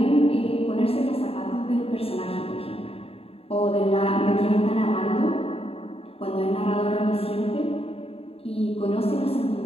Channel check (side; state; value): right; late; 0.28 ms